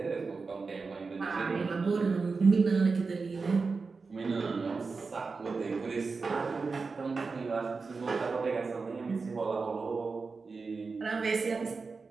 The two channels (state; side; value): quieter; left; 4.4 dB